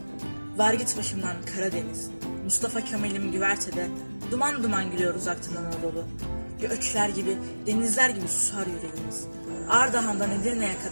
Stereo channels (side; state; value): both; inverted; correlation -1.00